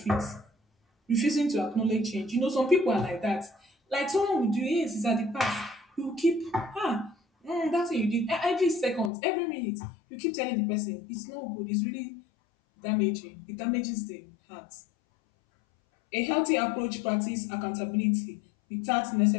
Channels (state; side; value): drops out; right; at 9.1 s